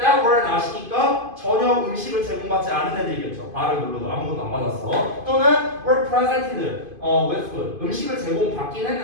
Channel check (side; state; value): left; late; 2.5 ms